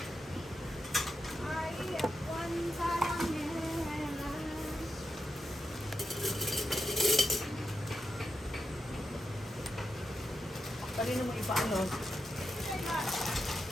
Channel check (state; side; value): normal; both; correlation 0.87